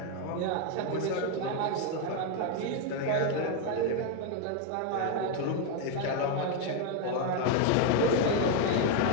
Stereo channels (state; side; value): different; both; correlation 0.01